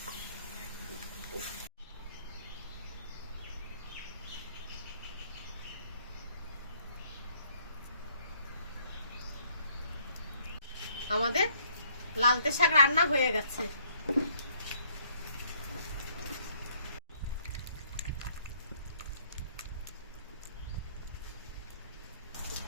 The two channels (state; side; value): inverted; both; correlation -0.65